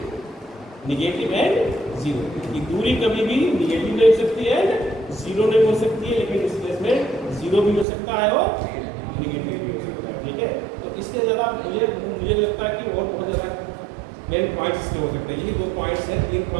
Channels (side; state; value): left; drops out; at 7.9 s